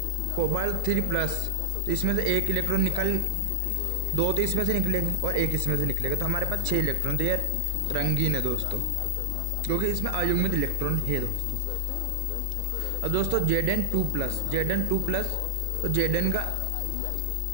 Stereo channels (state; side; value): different; both; correlation 0.00